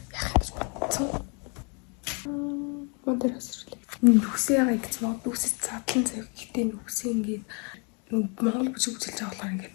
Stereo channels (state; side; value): quieter; right; 35.2 dB